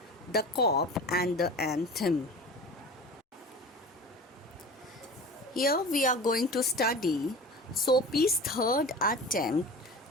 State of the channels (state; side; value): normal; both; correlation 0.36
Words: The Cop and the Anthem. Here we are going to study Soapy's third attempt